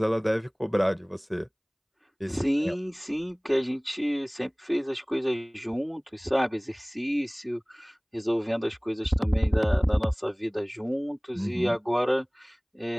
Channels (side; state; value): both; identical; correlation 1.00